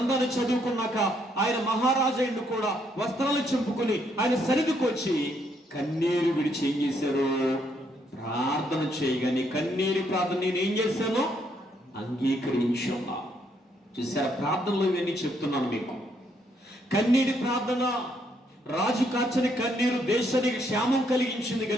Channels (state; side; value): normal; both; correlation 0.72